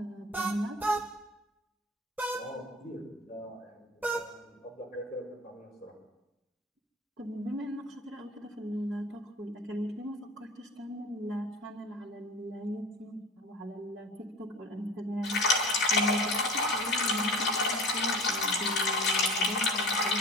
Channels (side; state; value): both; normal; correlation 0.36